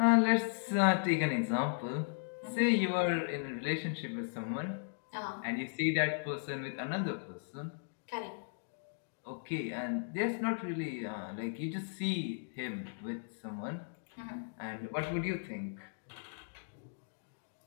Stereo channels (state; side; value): silent; right; digital silence